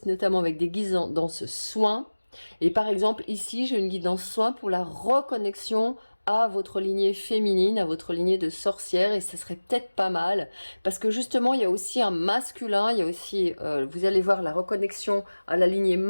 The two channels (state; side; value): inverted; both; correlation -1.00